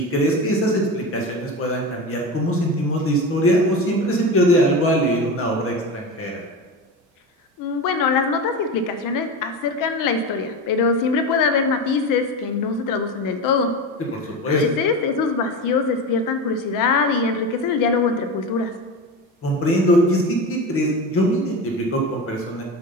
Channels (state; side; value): normal; both; correlation 0.24